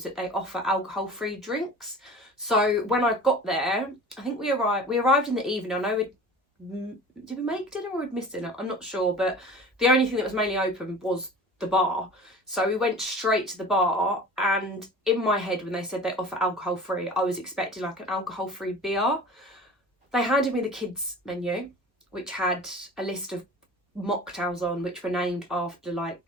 that they offer alcohol-free drinks. So when I got there, I think we arrived in the evening. I know did we make dinner or we'd missed dinner? I'm not sure, but the only thing that was mainly open was the bar. So we went straight to the bar, and in my head when they said they offer alcohol-free, I was expecting like an alcohol-free beer. They handed me the kids menu, which had a list of mocktails on, which were named after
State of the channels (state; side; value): normal; both; correlation 0.40